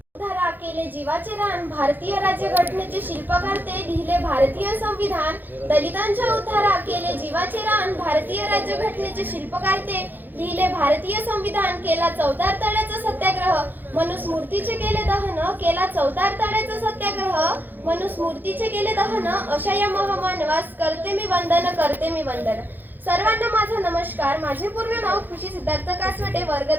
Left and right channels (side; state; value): left; late; 0.089 ms